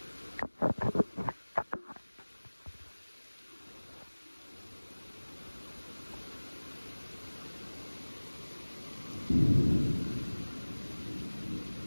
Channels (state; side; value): inverted; both; correlation -1.00